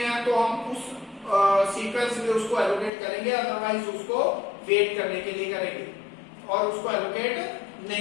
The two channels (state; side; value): drops out; right; at 2.9 s